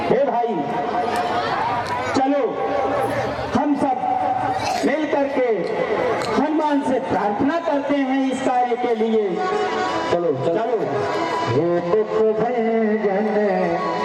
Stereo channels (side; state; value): both; identical; correlation 1.00